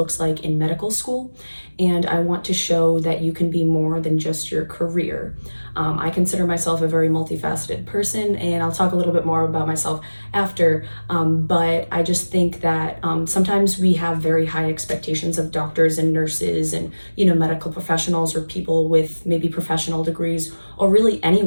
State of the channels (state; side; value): inverted; both; correlation -1.00